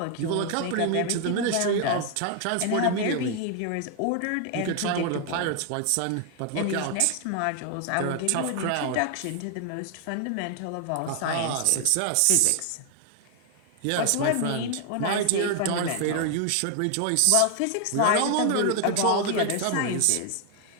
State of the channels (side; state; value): both; different; correlation 0.00